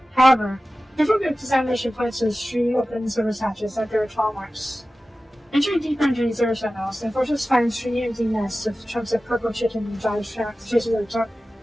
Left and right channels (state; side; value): normal; both; correlation 0.95